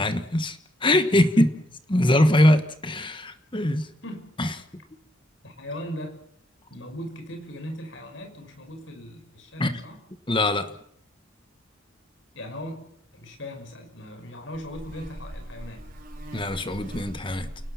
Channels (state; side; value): normal; both; correlation 0.73